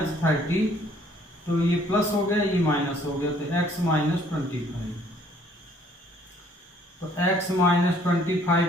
तो ये प्लस हो गया, ये माइनस हो गया, तो x माइनस 25, तो x माइनस 25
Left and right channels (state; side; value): normal; both; correlation 0.61